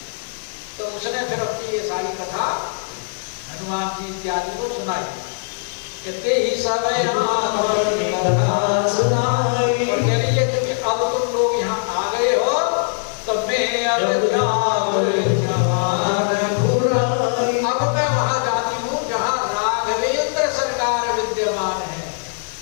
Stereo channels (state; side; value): silent; right; digital silence